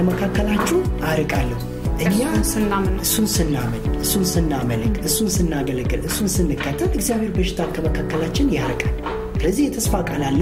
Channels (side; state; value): both; identical; correlation 1.00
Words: አርቃለሁ እኛ እሱን ስናመልክ እሱን ስናገለግል እሱን ስንከተል እግዚአብሔር በሽታን ከመካከላችን ያርቃል ስለዚህ የተስፋ ቃል